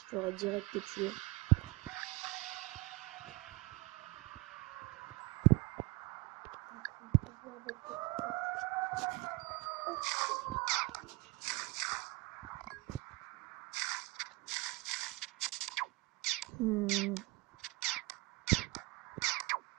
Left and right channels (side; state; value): left; quieter; 23.9 dB